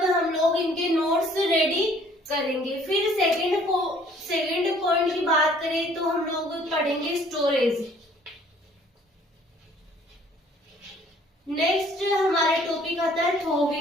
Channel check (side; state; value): both; normal; correlation 0.57